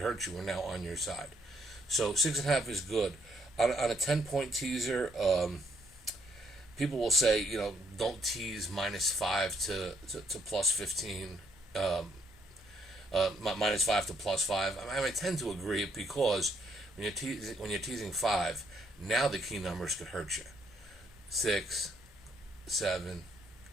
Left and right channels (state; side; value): normal; both; correlation 0.71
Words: you are now on your side. So 6.5 is good. On a 10-point teaser, people will say, don't tease -5 to +15, -5 to +5. I tend to agree because when you're teasing 5, now the key numbers could hurt you. 6, 7,